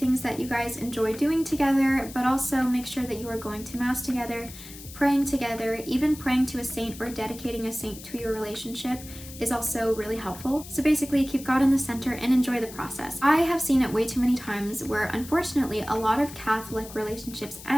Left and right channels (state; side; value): noise; left; hiss, 15 dB below the sound